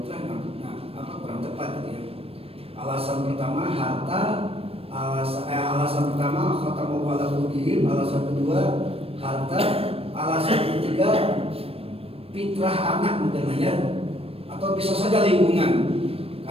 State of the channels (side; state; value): left; late; 0.28 ms